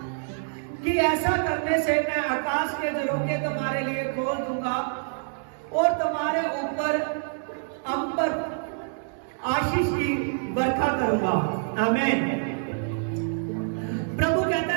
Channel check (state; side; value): silent; left; digital silence